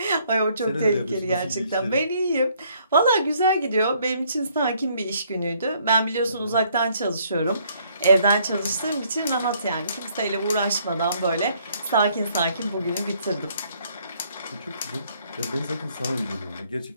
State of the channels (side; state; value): both; inverted; correlation -0.66